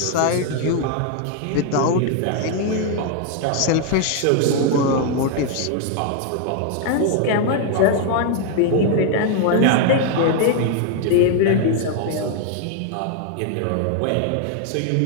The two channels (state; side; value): different; both; correlation 0.00